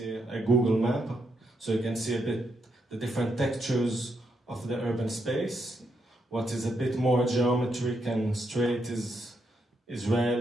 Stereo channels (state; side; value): normal; both; correlation 0.80